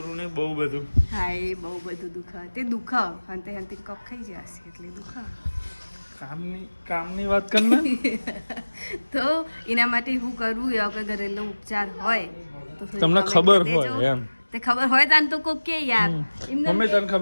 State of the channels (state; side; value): inverted; both; correlation -1.00